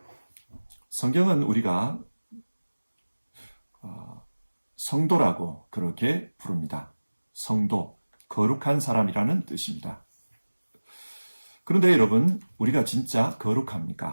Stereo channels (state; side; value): inverted; both; correlation -1.00